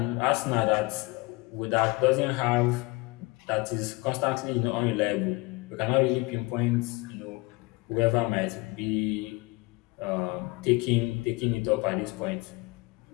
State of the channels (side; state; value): right; quieter; 24.2 dB